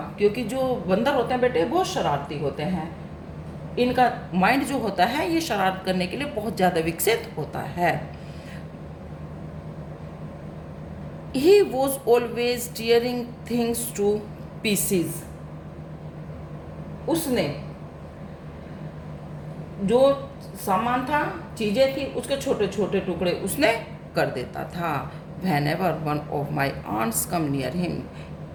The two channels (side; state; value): both; identical; correlation 1.00